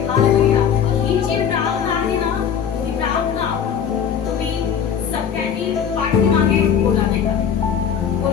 हालेलुया. ही जी प्रार्थना आहे ना, ही प्रार्थना तुम्ही सगळ्यांनी पाठीमागे बोला, नाही का?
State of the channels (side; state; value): right; quieter; 8.0 dB